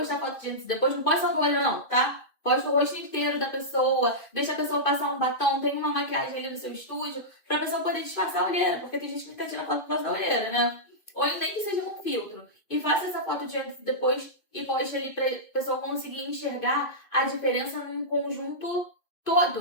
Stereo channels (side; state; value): right; late; 2.5 ms